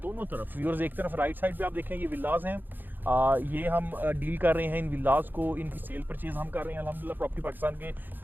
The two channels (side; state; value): left; late; 0.090 ms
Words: तरफ व्यूअर्स, एक तरफ राइट साइड पे आप देखें ये विलाज हैं, ये हम डील कर रहे हैं इन विलाज को, इनकी सेल परचेज हम कर रहे हैं अल्हम्दुलिल्लाह प्रॉपर्टी पाकिस्तान के